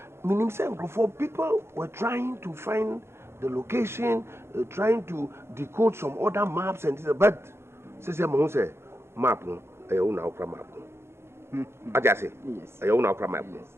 for people were trying to find the location, trying to decode some other maps and things. But say map no, I own our map. I just say yes. I own our map.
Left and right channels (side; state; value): left; late; 0.12 ms